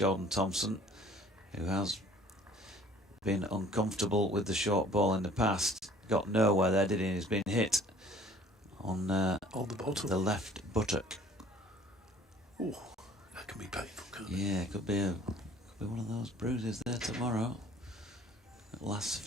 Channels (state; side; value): normal; both; correlation 0.53